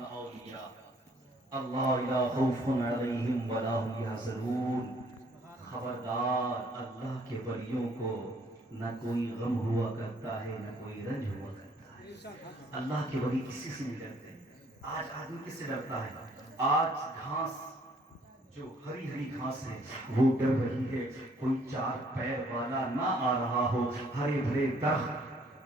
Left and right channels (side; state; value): both; normal; correlation 0.62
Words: ان اولیاء اللہ لا خوف علیہم ولا هم یحزنون۔ خبردار، اللہ کے ولیوں کو نہ کوئی غم ہوا کرتا ہے نہ کوئی رنج ہوا کرتا ہے۔ اللہ کے ولی کسی سے نہیں ڈرتے۔ آج آدمی کس سے ڈرتا ہے؟ آج گھاس جو ہری ہری گھاس ہے وہ ڈر رہی ہے کوئی چار پیر والا نہ آ رہا ہو، ہرے بھرے